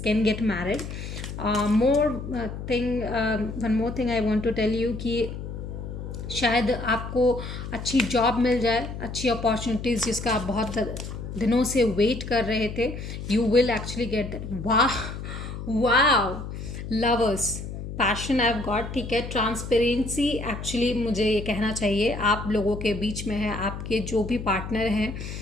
get married. One more thing I want to tell you कि शायद आपको अच्छी जॉब मिल जाए, अच्छी अपॉर्चुनिटीज़ जिसका आप बहुत दिनों से वेट कर रहे थे। You will actually get that. वाह lovers, passion I have got. ठीक है, ट्रांसपेरेंसी एक्चुअली मुझे ये कहना चाहिए आप लोगों के बीच में है। आपके जो भी पार्टनर हैं,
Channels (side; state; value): left; noise; hum, 8 dB below the sound